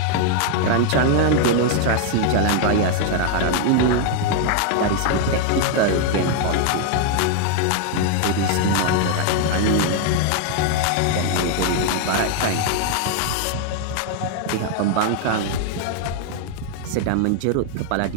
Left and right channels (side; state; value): both; different; correlation 0.00